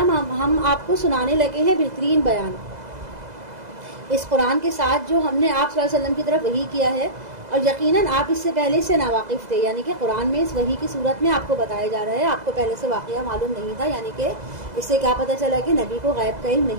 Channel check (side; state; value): left; late; 2.0 ms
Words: ہم آپ کو سنانے لگے ہیں بہترین بیان اس قرآن کے ساتھ جو ہم نے آپ صلی اللہ علیہ وسلم کی طرف وحی کیا ہے، اور یقیناً آپ اس سے پہلے سے ناواقف تھے، یعنی کہ قرآن میں اس وحی کی صورت میں آپ کو بتایا جا رہا ہے، آپ کو پہلے سے واقعہ معلوم نہیں تھا، یعنی کہ اس سے کیا پتہ چلا کہ نبی کو غیب کا علم